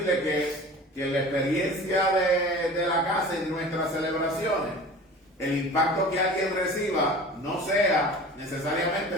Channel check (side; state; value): both; normal; correlation 0.39